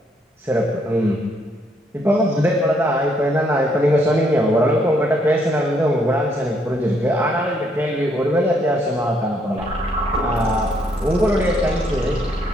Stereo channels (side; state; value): both; normal; correlation 0.71